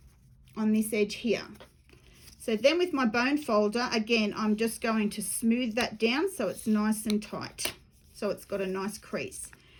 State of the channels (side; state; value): both; identical; correlation 1.00